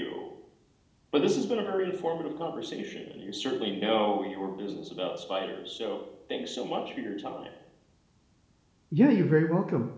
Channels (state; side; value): identical; both; correlation 1.00